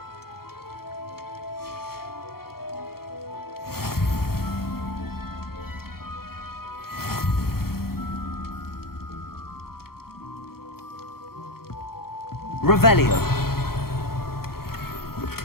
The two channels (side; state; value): right; late; 0.94 ms